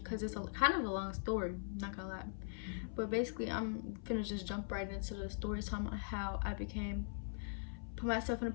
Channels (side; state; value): right; silent; 50 dB below the other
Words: it's kind of a long story. Not gonna lie. But basically, I'm gonna just jump right into the story talking about how I put myself in a